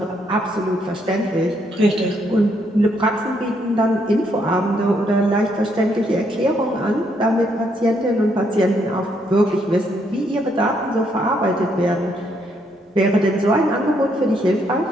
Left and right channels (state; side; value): normal; both; correlation 0.73